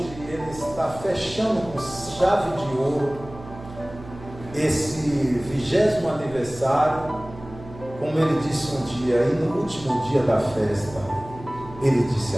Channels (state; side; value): noise; right; hum, 16 dB below the sound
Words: Ele está fechando com chave de ouro esse 20º aniversário, como Ele disse um dia, e no último dia da festa, Ele disse